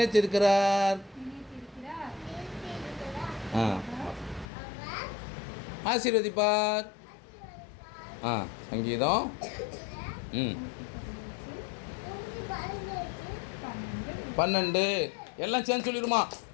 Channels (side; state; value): right; drops out; at 4.5 s